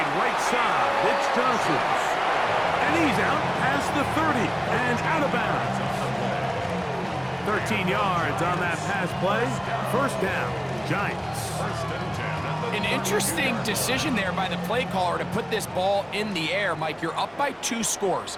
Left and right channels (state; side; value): identical; both; correlation 1.00